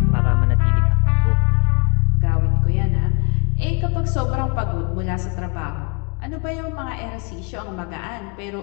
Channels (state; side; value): quieter; right; 33.3 dB